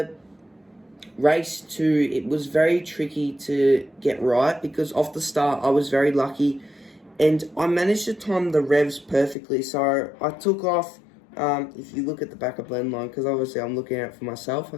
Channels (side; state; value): right; drops out; at 9.3 s